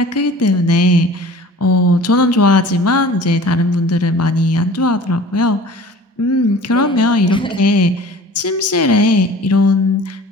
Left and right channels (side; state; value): both; normal; correlation 0.44